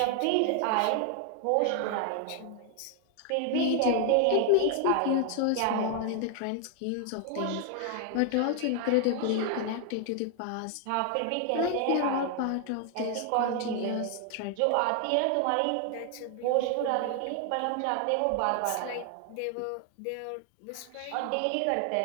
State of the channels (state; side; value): different; both; correlation 0.00